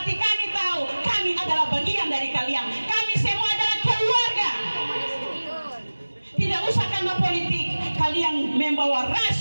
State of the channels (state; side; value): inverted; both; correlation -1.00